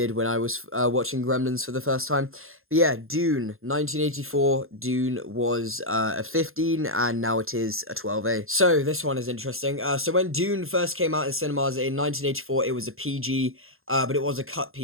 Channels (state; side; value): late; left; 0.61 ms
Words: when I was watching Gremlins for the first time. But yeah, Dune, 1984, Dune was a 15, and now it is a 12A. So, this one is interesting. So when Dune first came out in cinemas in 1984, it was a PG, but it was a cut